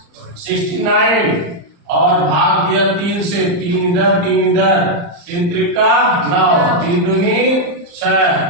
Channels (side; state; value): left; late; 35 ms